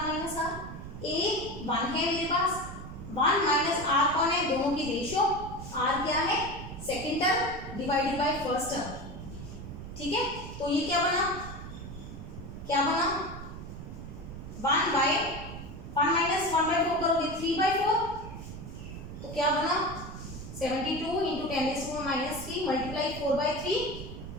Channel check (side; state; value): right; noise; rumble, 10 dB below the sound